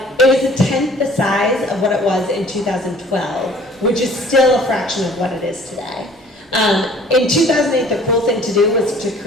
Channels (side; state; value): both; normal; correlation 0.52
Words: was a tenth the size of what it was in 2012, which is still a fraction of what it is today. In 2008, the cool thing to do was to